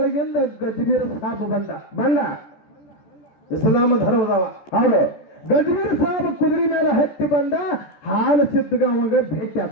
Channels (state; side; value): late; right; 14 ms